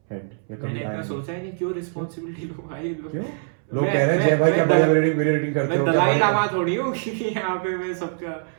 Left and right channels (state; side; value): silent; left; 63 dB below the other